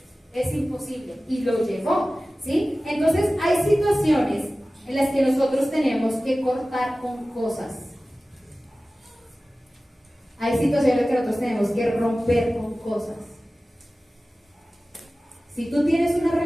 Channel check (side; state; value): both; normal; correlation 0.96